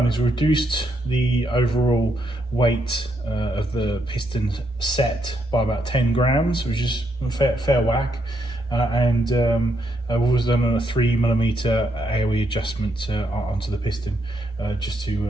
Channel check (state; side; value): normal; both; correlation 0.77